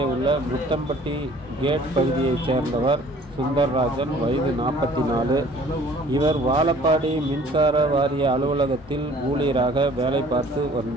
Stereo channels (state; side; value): normal; both; correlation 0.53